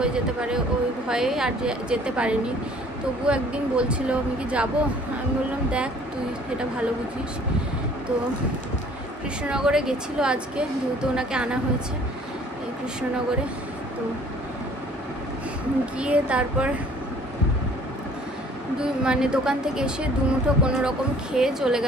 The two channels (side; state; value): both; normal; correlation 0.55